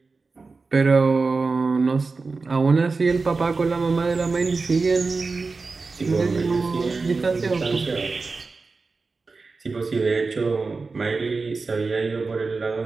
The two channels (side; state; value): left; quieter; 4.1 dB